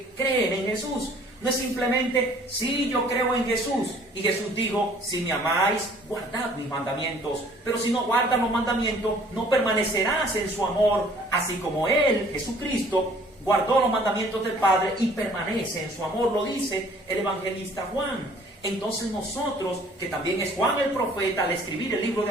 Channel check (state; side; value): normal; both; correlation 0.55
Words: creen en Jesús. No es simplemente, sí, yo creo en Jesús. Y Jesús dijo, si me amáis, guardad mis mandamientos. Pero si no guardas los mandamientos, no permanecerás en su amor. Así como Él, Jesucristo, guardó los mandamientos del Padre y permanece en su amor. Lo dice el evangelista Juan. Entonces nosotros, que también es Juan el profeta, al escribir el libro de